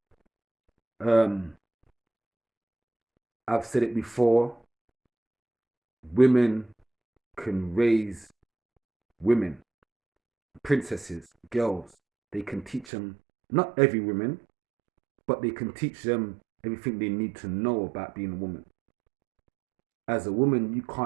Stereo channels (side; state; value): left; drops out; at 12.9 s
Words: I've said it before, women can raise women, princesses, girls. They can teach them, not every woman, but they can teach them everything they need to know about being a woman. As a woman, you